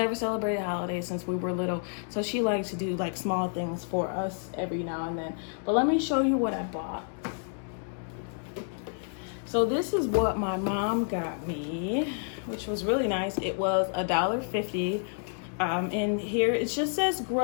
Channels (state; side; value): silent; right; 58 dB below the other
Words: celebrated holidays since we were little, so she likes to do like small things for us every now and then. But let me show you what I bought. So this is what my mom got me, which was really nice. It was $1.50, And here it just says